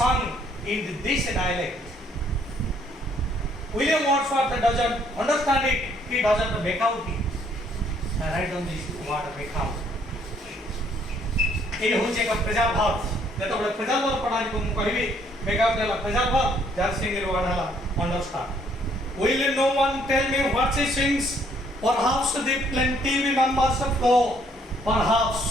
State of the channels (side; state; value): both; normal; correlation 0.65